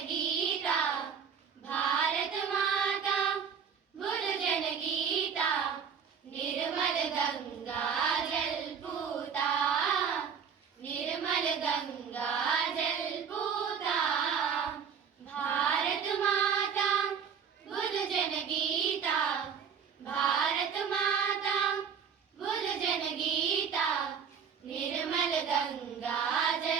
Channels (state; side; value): quieter; left; 7.0 dB